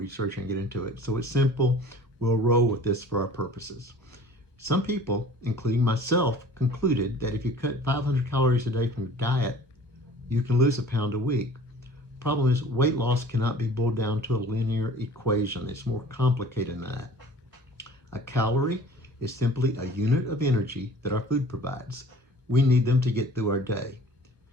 and get into it. So it's simple. We'll roll with this for our purposes. Some people, including myself, concluded that if you cut 500 calories a day from your diet, you can lose a pound a week. Problem is, weight loss cannot be boiled down to a linear equation. It's more complicated than that. A calorie is simply a unit of energy that our food provides. We need them to get through our day.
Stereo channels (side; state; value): both; normal; correlation 0.47